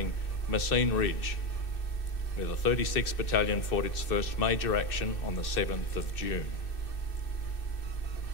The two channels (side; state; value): right; late; 2.6 ms